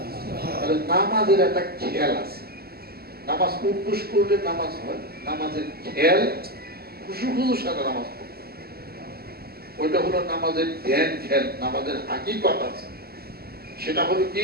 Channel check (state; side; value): late; left; 0.45 ms